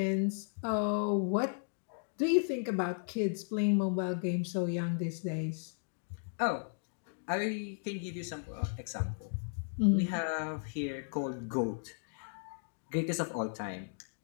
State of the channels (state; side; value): silent; right; digital silence